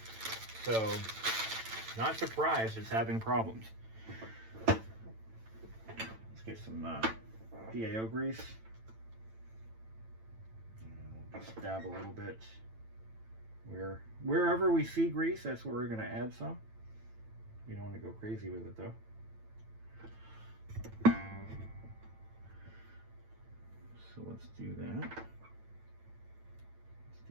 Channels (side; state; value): left; late; 9.0 ms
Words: So not surprised it's having problems. Let's get some PAO grease. And we'll just dab a little bit. Wherever we see grease, that's where we're going to add some. We don't want to go crazy with it though. So let's do that. Let's